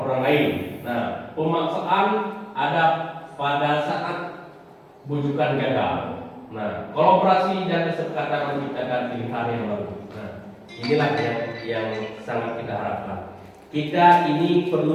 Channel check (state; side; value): identical; both; correlation 1.00